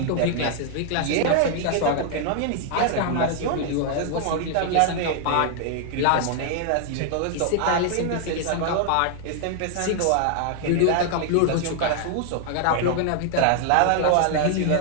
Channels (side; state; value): both; different; correlation 0.00